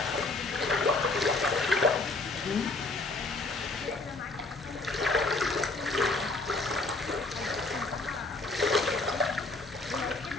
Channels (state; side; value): quieter; right; 3.3 dB